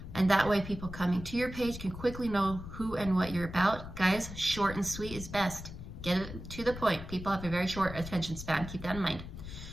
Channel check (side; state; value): left; noise; rumble, 11 dB below the sound